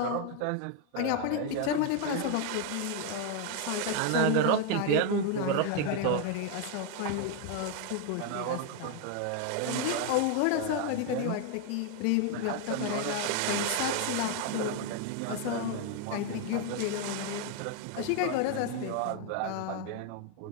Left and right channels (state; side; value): different; both; correlation 0.01